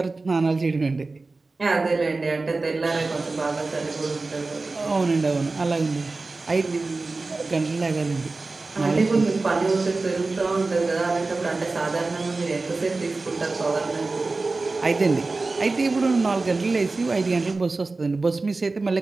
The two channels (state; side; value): quieter; left; 3.6 dB